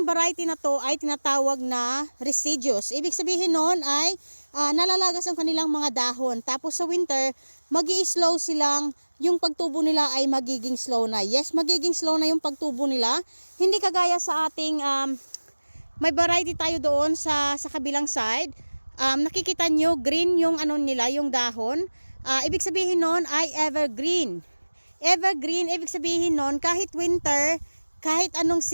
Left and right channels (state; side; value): inverted; both; correlation -1.00